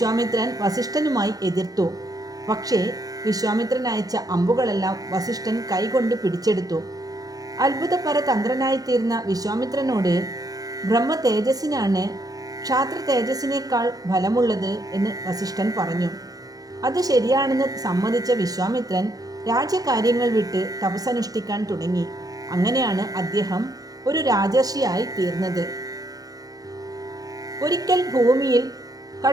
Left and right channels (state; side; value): late; left; 0.18 ms